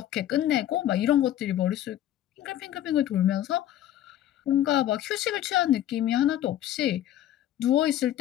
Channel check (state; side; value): quieter; right; 12.3 dB